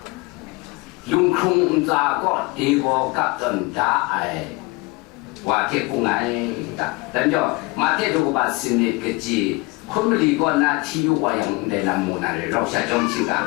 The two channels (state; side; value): quieter; right; 24.4 dB